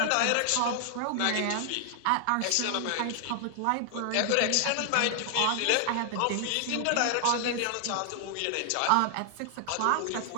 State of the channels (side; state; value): both; different; correlation 0.00